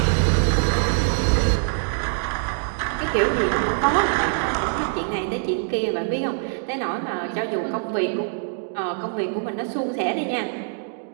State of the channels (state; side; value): silent; left; digital silence